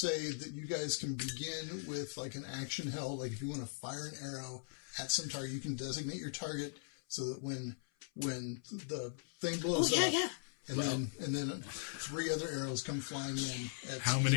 that you guys can begin with like an action held. Like if you want to fire an arrow at some target, you can designate your target so that when the thing blows Oh, yeah, up, yeah. and then 3 other arrows come flying in. At How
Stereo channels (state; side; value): silent; right; 51 dB below the other